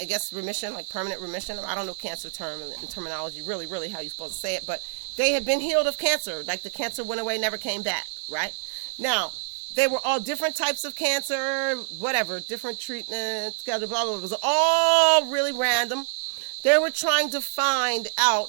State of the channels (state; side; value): silent; left; digital silence